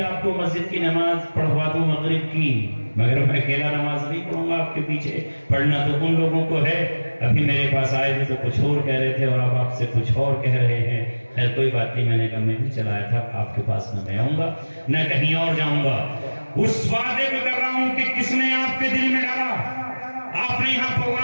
آپ کو مسجد کی نماز پڑھوا دوں مغرب کی، مگر میں اکیلا نماز نہیں پڑھوں گا آپ کے پیچھے، پڑھنا تو ان لوگوں کو ہے۔ ابھی میرے پاس آئے تھے تو کچھ اور کہہ رہے تھے اور اب آپ سے کچھ اور کہہ رہے ہیں۔ خیر کوئی بات نہیں، میں نے کہا میں بھی چلایا تھا، آپ کے پاس نہ میں آؤں گا نہ کہیں اور جاؤں گا۔ اس وعدے کو کر رہا ہوں کہ کس نے آپ کے دل میں ڈالا، آپ نے یہاں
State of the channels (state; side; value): inverted; both; correlation -1.00